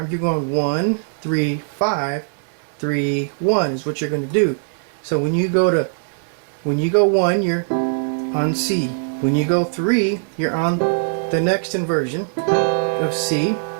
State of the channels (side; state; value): left; silent; 65 dB below the other